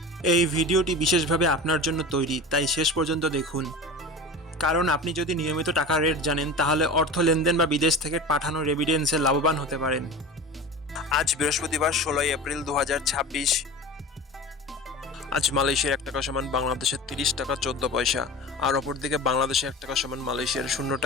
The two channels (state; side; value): normal; both; correlation 0.33